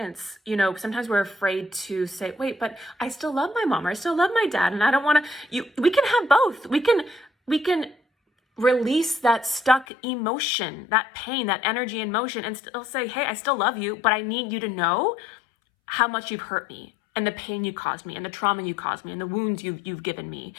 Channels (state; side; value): drops out; right; at 9.9 s